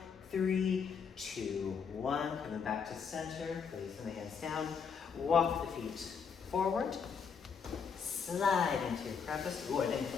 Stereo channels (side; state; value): right; quieter; 6.2 dB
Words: 3, 2, 1, coming back to center, placing the hands down, walk the feet forward, slide into your crevice. Ooh, I didn't